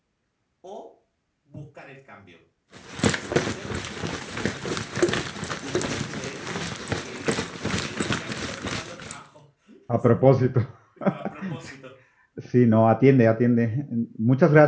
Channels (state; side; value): identical; both; correlation 1.00